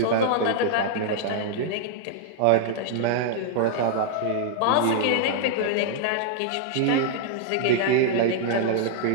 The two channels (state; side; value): different; both; correlation -0.01